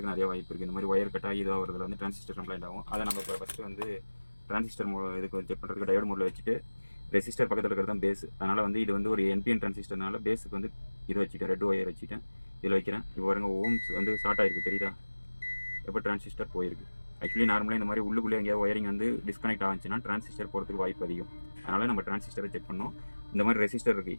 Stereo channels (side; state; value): both; inverted; correlation -1.00